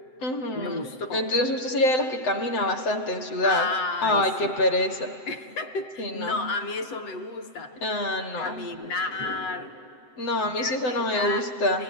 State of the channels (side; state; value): right; late; 7.8 ms